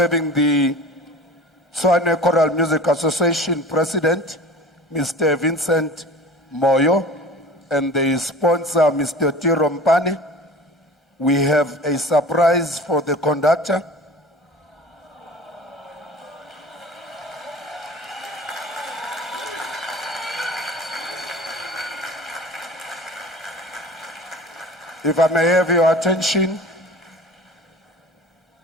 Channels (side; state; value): both; normal; correlation 0.39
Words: the Tshwane Choral Music Association President, Mr. Vincent Moyo, and the sponsor, Mr. Tiro Mpane. We have a surprise for the conductor. If I may have your attention,